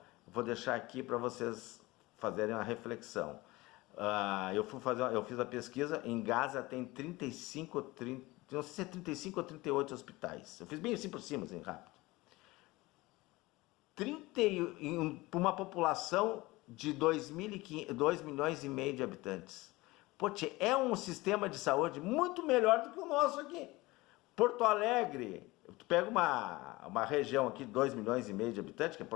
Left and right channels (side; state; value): right; quieter; 20.9 dB